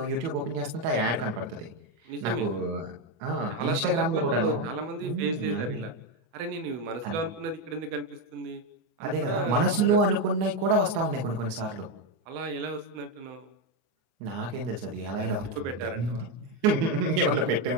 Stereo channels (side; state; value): left; late; 24 ms